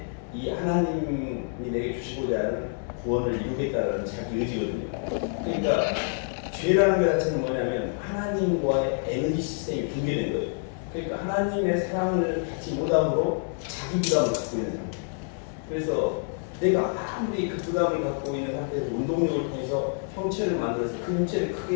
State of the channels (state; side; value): silent; right; 60 dB below the other